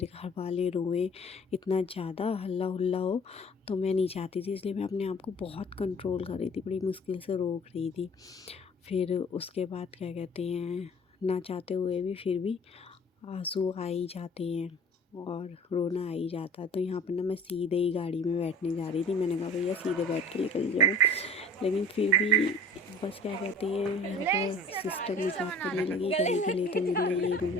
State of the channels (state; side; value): normal; both; correlation 0.46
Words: घर वाले रोएं, इतना ज़्यादा हल्ला हुल्ला हो। तो मैं नहीं चाहती थी, इसलिए मैं अपने आप को बहुत कंट्रोल कर रही थी, बड़ी मुश्किल से रोक रही थी। फिर उसके बाद क्या कहते हैं, ना चाहते हुए भी फिर भी आंसू आ ही जाते हैं और रोना आ ही जाता है। तो यहाँ पर ना मैं सीधे ही गाड़ी में बैठने जा रही थी, मैंने कहा भैया सीधे बैठ के निकल जाऊँ, लेकिन फिर भी बस क्या कहते हैं, यहाँ पर सिस्टर मजाक करने लगी, गले गले तो मिल ले, ये मिल